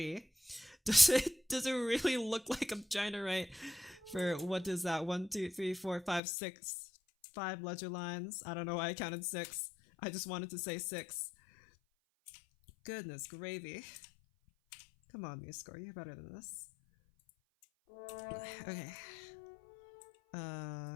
Does it really look like I'm trying to write for, what is that, 1, 2, 3, 4, 5, 6, 5 ledger lines? I don't know why I counted 6. I just wanted to say 6. Goodness gravy. Come on, MuseScore, you're better than this. Okay.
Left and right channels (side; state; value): right; drops out; at 6.2 s